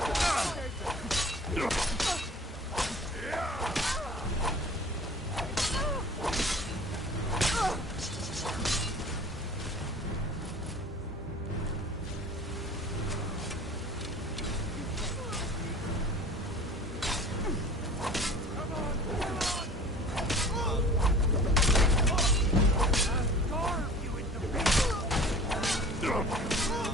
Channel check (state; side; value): normal; both; correlation 0.43